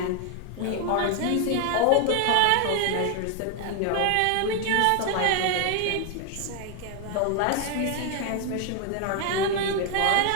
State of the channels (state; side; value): different; both; correlation 0.01